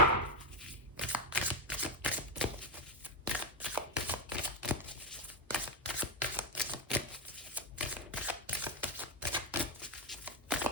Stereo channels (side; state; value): both; normal; correlation 0.09